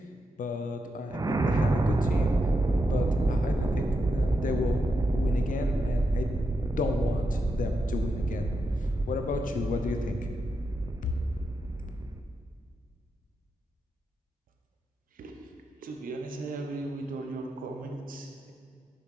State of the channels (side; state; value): both; normal; correlation 0.85